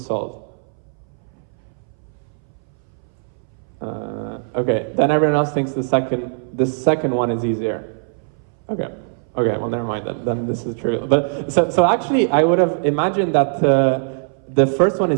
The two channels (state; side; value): silent; left; 62 dB below the other